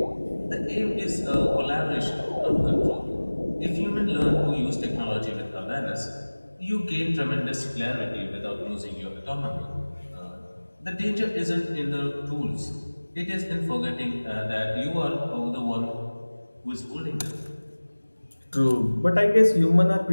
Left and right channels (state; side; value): inverted; both; correlation -1.00